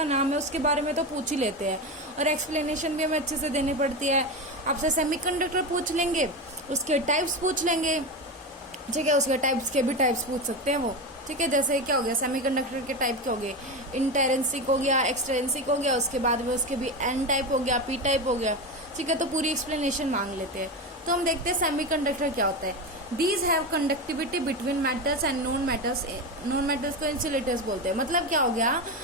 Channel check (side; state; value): both; normal; correlation 0.19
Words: नाम है उसके बारे में तो पूछ ही लेते हैं और एक्सप्लेनेशन भी हमें अच्छे से देनी पड़ती है। आपसे सेमीकंडक्टर पूछ लेंगे, उसके टाइप्स पूछ लेंगे, ठीक है। उसके टाइप्स के भी टाइप्स पूछ सकते हैं वो, ठीक है। जैसे क्या हो गया, सेमीकंडक्टर के टाइप क्या हो गए, इंटेरेंसिक हो गया, एक्सट्रेंसिक हो गया, उसके बाद में उसके भी एन टाइप हो गया, पी टाइप हो गया, ठीक है। तो पूरी एक्सप्लेनेशन मांग लेते हैं। तो हम देखते हैं सेमीकंडक्टर क्या होता है। These have conductivity between metals and non metals. Non metals को इंसुलेटर्स बोलते हैं। मतलब क्या हो गया,